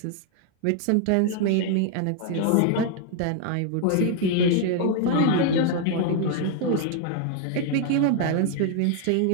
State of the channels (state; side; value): different; both; correlation 0.00